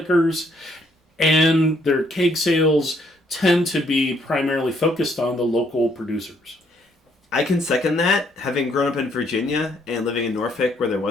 and their keg sales tend to be primarily focused on the local producers. I can second that. Having grown up in Virginia and living in Norfolk where there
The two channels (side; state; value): both; normal; correlation 0.69